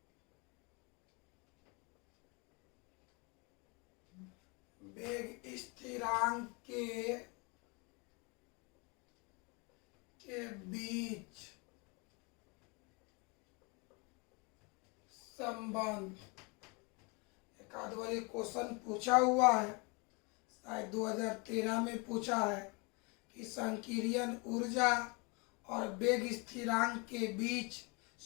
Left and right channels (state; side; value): quieter; right; 30.3 dB